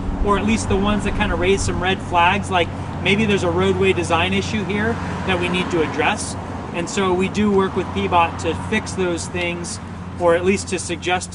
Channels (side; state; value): both; identical; correlation 1.00